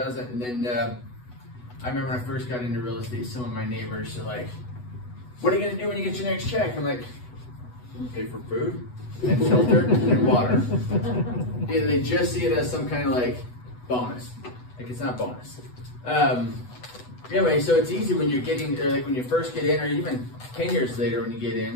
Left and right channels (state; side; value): late; right; 8.1 ms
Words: And then I remember when I first got into real estate, some of my neighbors are like, "What are you gonna do when you get your next check?" I'm like, "Pay for food and shelter and water." Either they just see it as some kind of like bonus, like it's not bonus. Anyway, so it's easy when you're getting, like when you first get in, or even 10 years later when you get